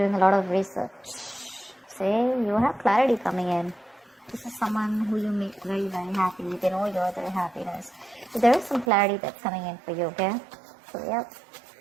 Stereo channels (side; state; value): left; drops out; at 8.9 s